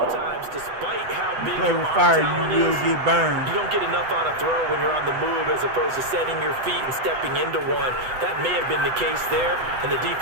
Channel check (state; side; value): late; left; 8.0 ms